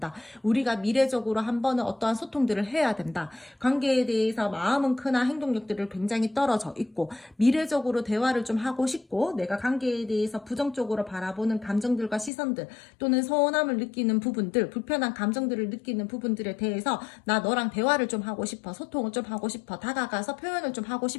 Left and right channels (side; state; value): right; drops out; at 12.3 s